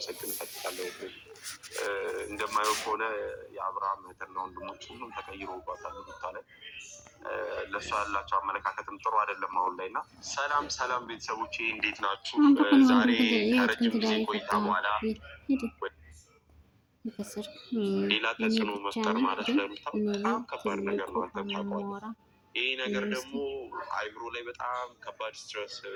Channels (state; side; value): identical; both; correlation 1.00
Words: እፈልጋለሁ። እንደማየው ከሆነ የአብርሃም እህትና ወንድሞች ሁሉም ተቀይሮባታል ሩታ ላይ። ለእሷ ያላቸው አመለካከትም ጥሩ አይደለም አሁን ላይ እና ሰላም ሰላም ቤተሰቦቼ እንዴት ናችሁ? ዛሬ ከረጅም ጊዜ ቆይታ በኋላ ሌላ ተጽዕኖ መፍጠር ማለት ለሩታ በጣም ከባድ ነገር ነው። አንተም ታውቀዋለህ። ይህ ነገር ደግሞ አይምሮ ላይ በጣም ከባድ ስትረስ